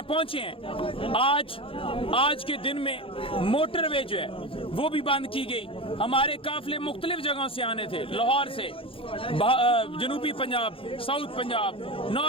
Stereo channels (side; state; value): right; late; 0.26 ms